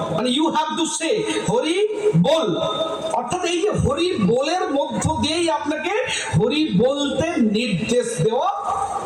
মানে you have to say Hari বল। অর্থাৎ এই যে হরি বলের মধ্য দিয়েই আপনাকে হরি বলতে নির্দেশ দেওয়া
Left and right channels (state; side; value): identical; both; correlation 1.00